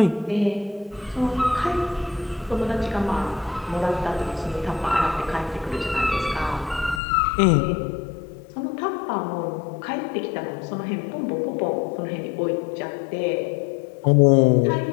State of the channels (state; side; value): drops out; right; at 7.0 s